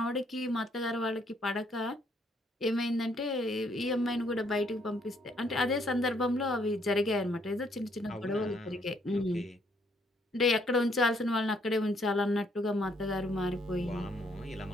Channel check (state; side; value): normal; both; correlation 0.69